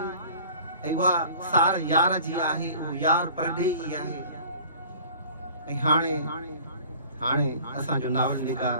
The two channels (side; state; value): both; inverted; correlation -0.47